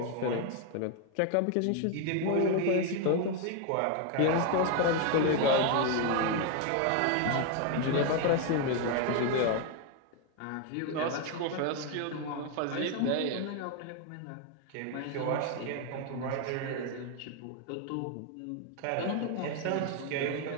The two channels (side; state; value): both; different; correlation 0.01